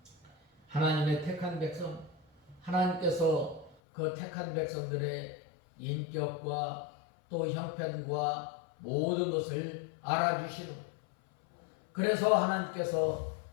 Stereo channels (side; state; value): right; drops out; at 3.8 s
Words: 하나님의 택한 백성, 하나님께서 그 택한 백성들의 인격과 또 형편과 모든 것을 알아주시는, 그래서 하나님께서